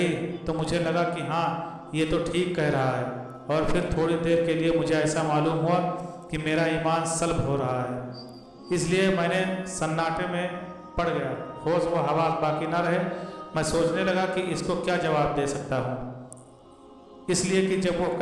تو مجھے لگا کہ ہاں یہ تو ٹھیک کہہ رہا ہے، اور پھر تھوڑی دیر کے لیے مجھے ایسا معلوم ہوا کہ میرا ایمان سلب ہو رہا ہے۔ اس لیے میں نے سناٹے میں پڑ گیا، ہوش و حواس باقی نہ رہے۔ میں سوچنے لگا کہ اس کو کیا جواب دے سکتا ہوں، اس لیے کہ جب وہ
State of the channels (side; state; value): both; identical; correlation 1.00